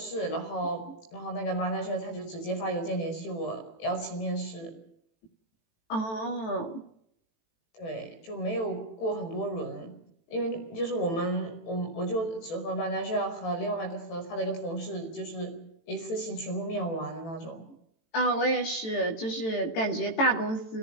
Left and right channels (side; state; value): right; late; 18 ms